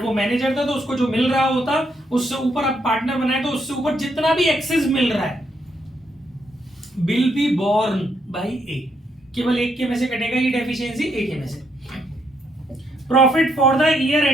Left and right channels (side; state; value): both; normal; correlation 0.75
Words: वो manager था तो उसको जो मिल रहा होता उससे ऊपर अब पार्टनर बनाए तो उससे ऊपर जितना भी एक्सेस मिल रहा है विल बी बोर्न बाई ए, केवल एक के में से कटेगा ये डेफिशिएंसी, एक के में से। Profit for the year